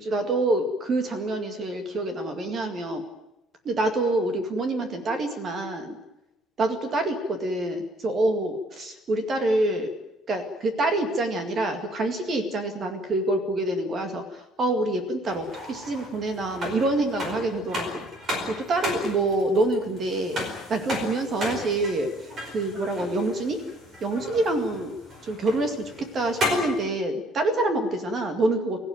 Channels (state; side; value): normal; both; correlation 0.60